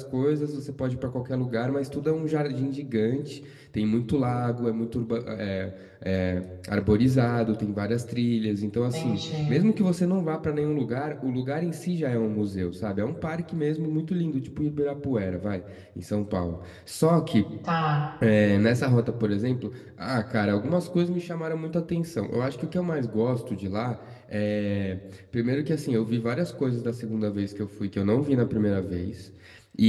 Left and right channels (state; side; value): identical; both; correlation 1.00